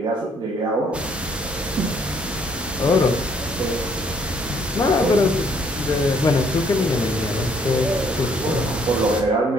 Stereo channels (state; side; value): normal; both; correlation 0.65